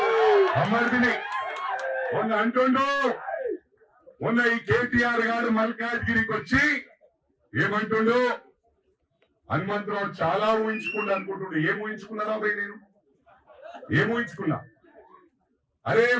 బొమ్మర్దిని అంటుండు. మొన్న ఈ కేటీఆర్ గారు మల్కాజ్గిరికి వచ్చి ఏమంటుండు? హనుమంతరావు చాలా ఊహించుకున్నా అనుకుంటుండే. ఏం ఊహించుకున్నారా భయ్? నేను ఏం ఊహించుకున్నా? అరే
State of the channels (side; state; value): both; identical; correlation 1.00